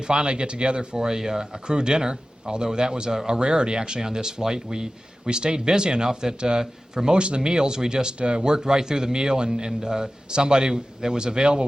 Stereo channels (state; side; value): normal; both; correlation 0.95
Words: finally get together for a crew dinner, although that was a rarity actually on this flight. We stayed busy enough that for most of the meals we just worked right through the meal, and somebody that was available